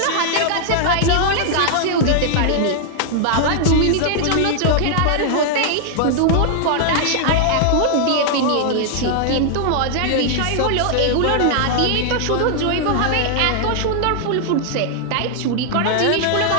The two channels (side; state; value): both; different; correlation -0.01